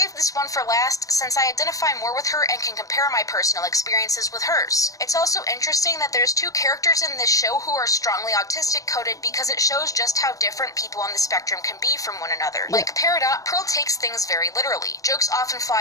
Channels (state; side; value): late; right; 0.16 ms